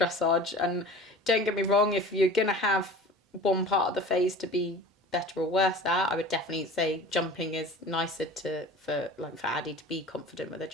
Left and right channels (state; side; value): normal; both; correlation 0.39